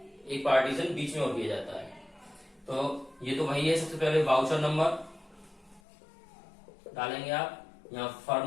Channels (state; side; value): drops out; right; at 5.8 s